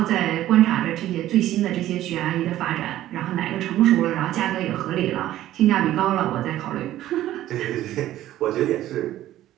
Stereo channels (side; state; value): left; quieter; 13.7 dB